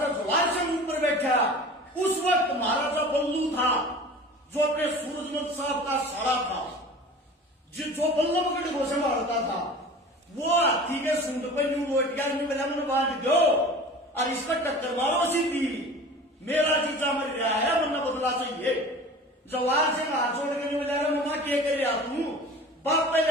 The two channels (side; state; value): both; normal; correlation 0.39